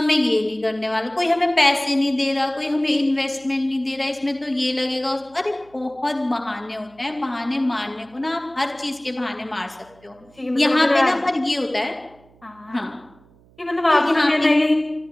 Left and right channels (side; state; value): right; noise; hum, 29 dB below the sound